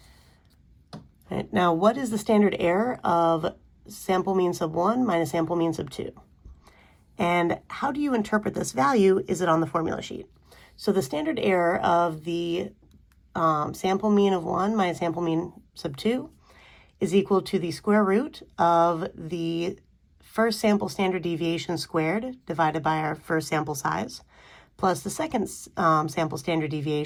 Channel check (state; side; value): identical; both; correlation 1.00